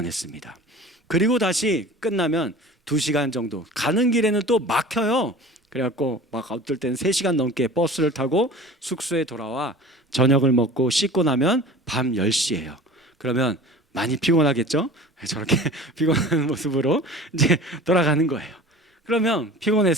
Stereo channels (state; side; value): normal; both; correlation 0.40